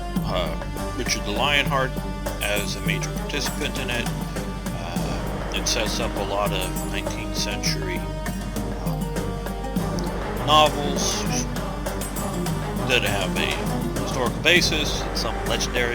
Richard the Lionheart as a major participant in it. It sets up a lot of 19th century novels that have a historical basis, some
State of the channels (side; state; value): both; identical; correlation 1.00